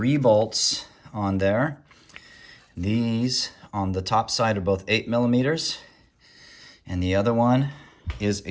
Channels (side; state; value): both; identical; correlation 1.00